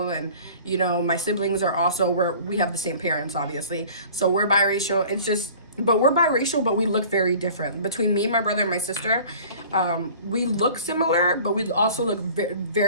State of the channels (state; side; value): inverted; both; correlation -0.46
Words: and you know, my siblings are also, we have the same parents obviously, so we're biracial. It's just, but we're biracial, but we look very different. Between me, my brother, and my sister, we look similar, but we also look